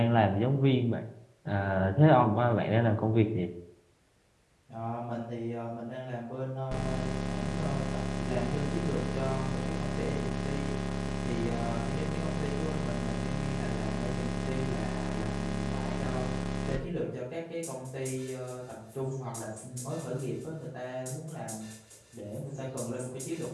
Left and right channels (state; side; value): identical; both; correlation 1.00